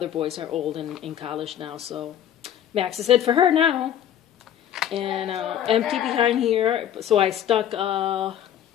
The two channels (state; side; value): quieter; right; 10.5 dB